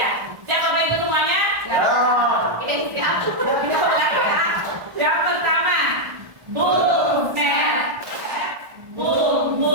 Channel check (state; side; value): late; left; 1.3 ms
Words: ya. Siap Bapak Ibu semuanya? Ya. Siap. Yang pertama, boom, snap, boom,